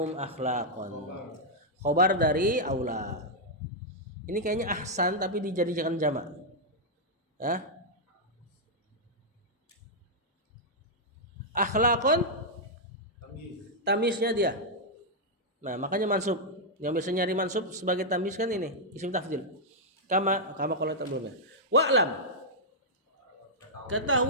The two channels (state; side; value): normal; both; correlation -0.06